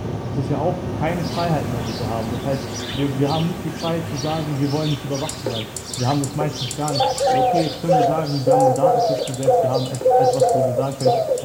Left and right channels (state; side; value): identical; both; correlation 1.00